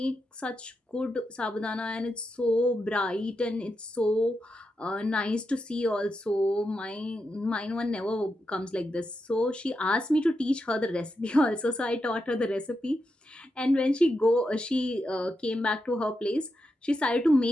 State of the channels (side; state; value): both; normal; correlation 0.86